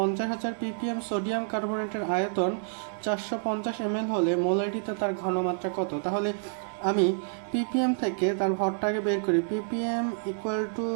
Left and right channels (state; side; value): silent; left; digital silence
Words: পিপিএম সোডিয়াম কার্বনেটের আয়তন 450 ml হলে মোলারিটিতে তার ঘনমাত্রা কত। তাহলে আমি পিপিএম থেকে তার ভরটাকে বের করি। PPM equal to